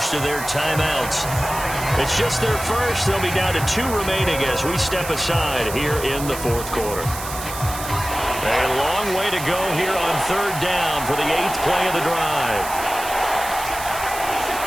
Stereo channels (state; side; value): noise; right; hiss, 9 dB below the sound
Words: of their timeouts. It's just their first. They'll be down to 2 remaining as we step aside here in the fourth quarter. A long way to go here on third down for the 8th play of the drive.